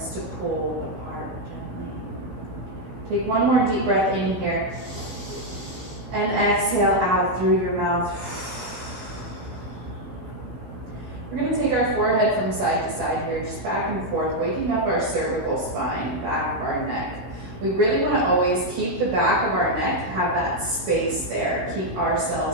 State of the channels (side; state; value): left; late; 16 ms